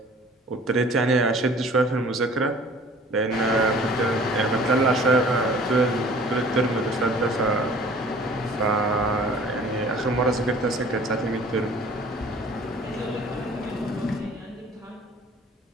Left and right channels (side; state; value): both; normal; correlation 0.49